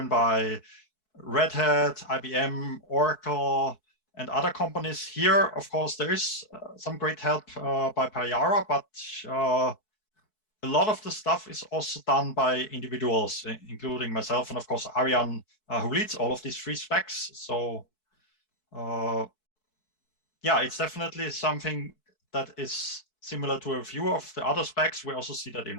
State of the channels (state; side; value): late; right; 4.6 ms